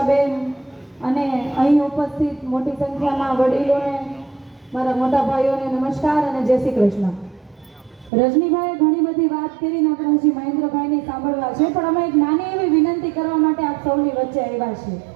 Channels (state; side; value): drops out; left; at 8.1 s